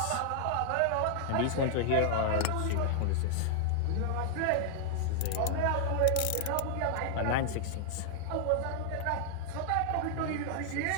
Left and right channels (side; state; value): both; different; correlation 0.00